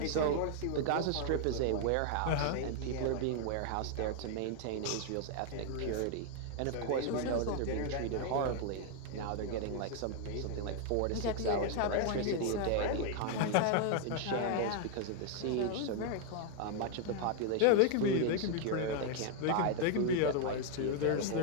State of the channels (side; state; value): both; different; correlation 0.00